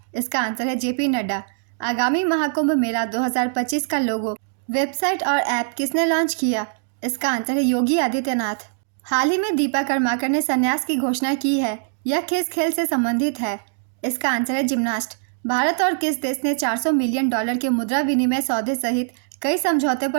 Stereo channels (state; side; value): silent; left; digital silence